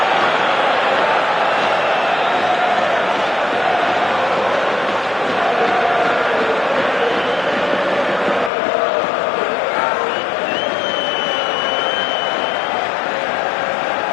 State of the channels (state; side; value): drops out; right; at 8.5 s